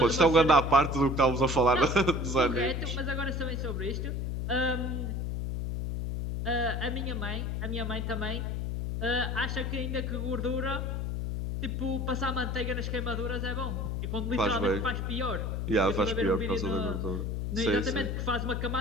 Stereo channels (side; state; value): left; noise; hum, 2 dB below the sound